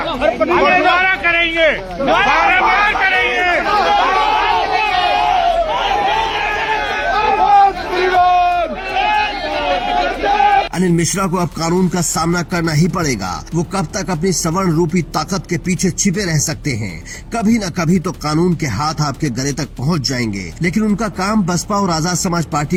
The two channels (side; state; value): both; identical; correlation 1.00